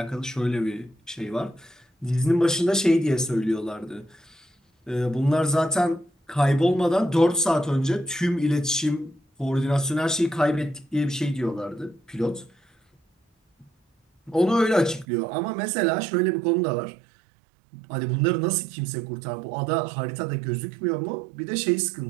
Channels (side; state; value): left; drops out; at 15.1 s